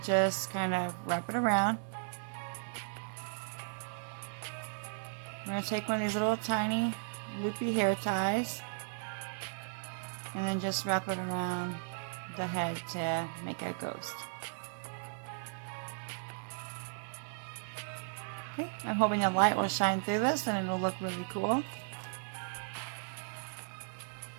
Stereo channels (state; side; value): silent; left; 54 dB below the other